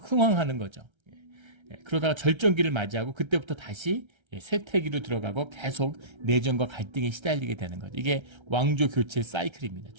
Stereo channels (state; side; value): late; left; 1.3 ms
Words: 거죠. 그러다가 절정기를 맞이하고 그때부터 다시 쇠퇴기로 들어가고 계속 내전과 갈등에 시달리게 되는 거죠. 이게 왕조 교체 사이클입니다.